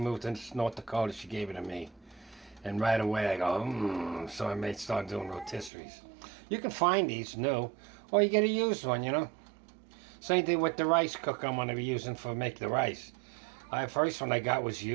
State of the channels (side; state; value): left; drops out; at 5.7 s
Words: to North Dakota, she gave it to me. And right away I go, so I may start doing rotisseries. You can find these new, or you get a used one, you know. Same thing with the rice cooker I'm going to be using for make the rice. The first one I got was